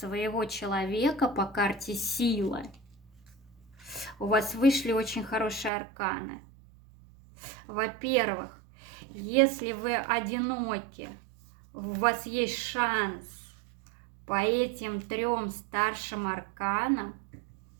человека по карте сила. У вас вышли очень хорошие арканы. Во-первых, если вы одиноки, у вас есть шанс по этим 3 старшим арканам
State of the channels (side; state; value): left; drops out; at 5.7 s